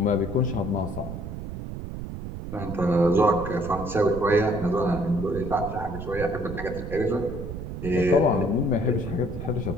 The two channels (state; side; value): noise; right; rumble, 8 dB below the sound